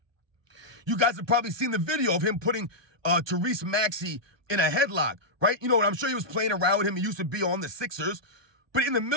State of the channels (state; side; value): late; left; 1.2 ms